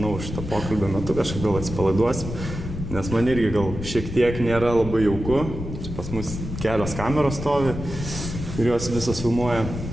šitą pokalbio metu kažkaip gal atsipalaiduosim, nes man irgi gal šiek tiek nėra labai jauku. Čia pas mus kelios kameros stovi ir jos visos filmuoja.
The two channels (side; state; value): left; noise; rumble, 7 dB below the sound